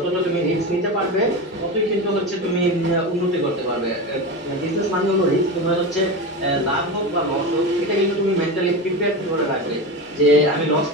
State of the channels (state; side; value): normal; both; correlation 0.22